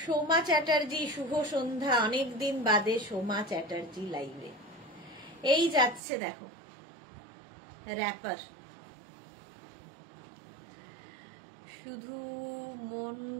সোমা চ্যাটার্জি শুভ সন্ধ্যা, অনেকদিন বাদে সোমা চ্যাটার্জি লাইভে। এই যাচ্ছে দেখো র্যাপার, শুধু মন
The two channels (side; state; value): left; drops out; at 6.0 s